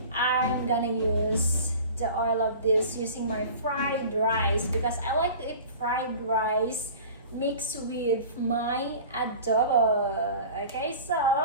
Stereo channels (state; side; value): inverted; both; correlation -0.41